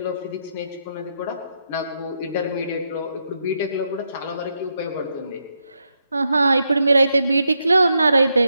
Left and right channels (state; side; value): inverted; both; correlation -0.82